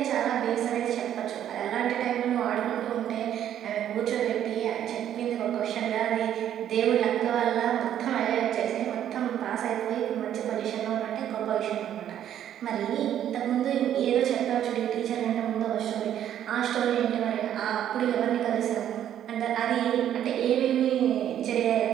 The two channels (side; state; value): left; quieter; 10.6 dB